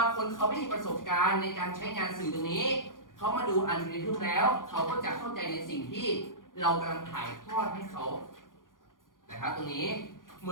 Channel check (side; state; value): right; late; 0.89 ms